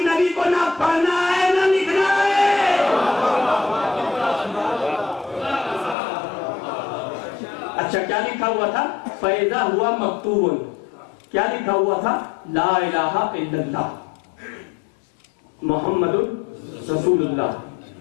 نبی کو نہ پڑھنا ہے نہ لکھنا ہے. اچھا کیا لکھا ہوا تھا؟ فیضا ہوا مکتوبن. کیا لکھا ہوا تھا؟ لا الہ الا اللہ محمد رسول اللہ.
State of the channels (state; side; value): drops out; right; at 6.0 s